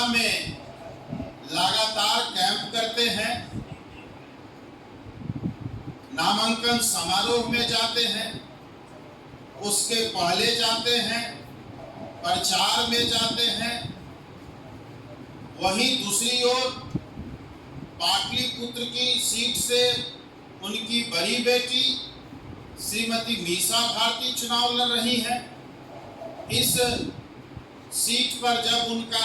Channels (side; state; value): both; identical; correlation 1.00